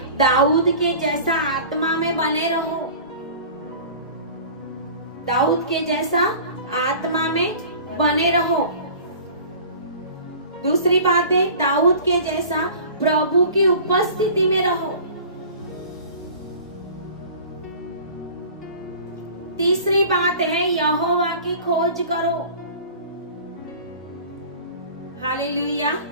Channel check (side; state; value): both; inverted; correlation -0.42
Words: दाऊद के जैसा आत्मा में बने रहो। दाऊद के जैसा आत्मा में बने रहो। दूसरी बात है, दाऊद के जैसा प्रभु की उपस्थिति में रहो। तीसरी बात है, यहोवा की खोज करो, हालेलुया।